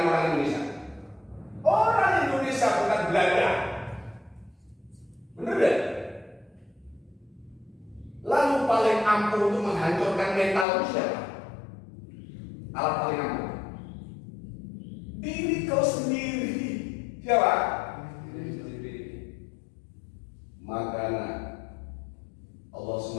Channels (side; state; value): right; drops out; at 10.7 s